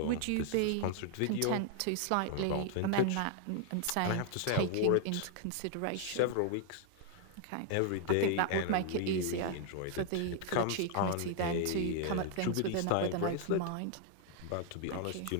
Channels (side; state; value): both; different; correlation 0.00